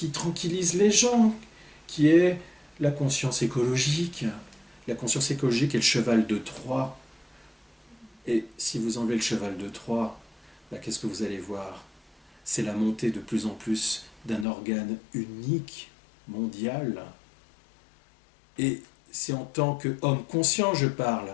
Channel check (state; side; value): drops out; right; at 14.5 s